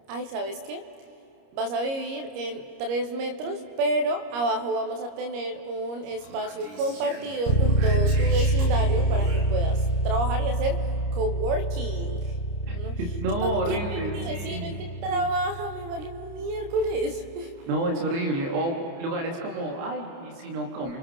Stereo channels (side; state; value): left; late; 30 ms